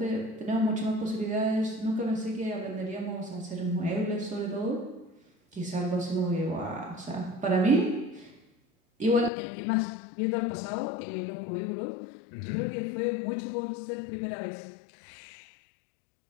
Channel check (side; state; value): right; drops out; at 9.3 s